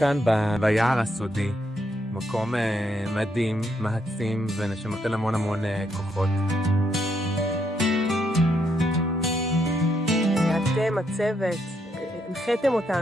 ביער הסודי, מקום מדהים, מעצים ונותן המון כוחות. אתם, הצוות, הנחיתם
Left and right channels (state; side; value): normal; both; correlation 0.76